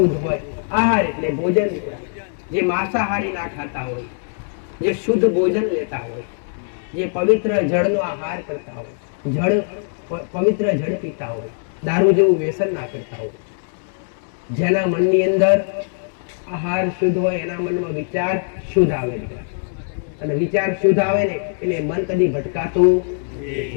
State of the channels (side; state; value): right; silent; 65 dB below the other